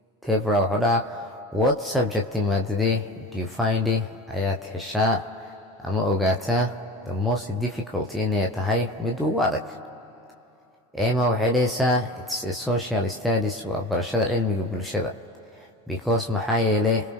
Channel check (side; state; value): both; normal; correlation 0.33